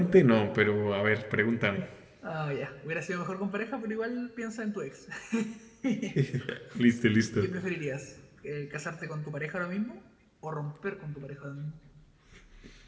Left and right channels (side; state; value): both; identical; correlation 1.00